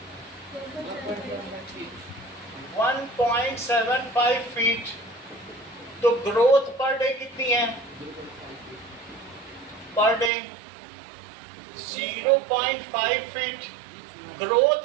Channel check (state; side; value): drops out; left; at 10.3 s